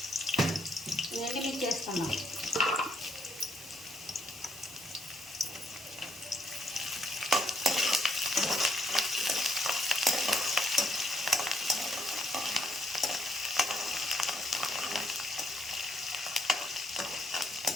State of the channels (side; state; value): both; normal; correlation 0.72